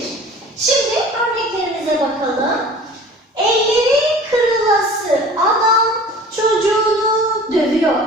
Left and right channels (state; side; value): normal; both; correlation 0.43